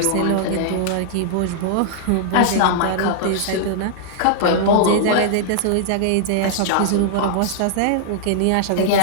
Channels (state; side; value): different; both; correlation -0.01